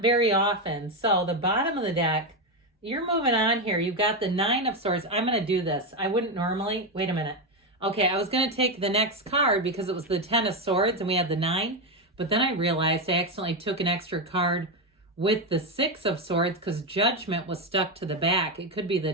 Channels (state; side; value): normal; both; correlation 0.09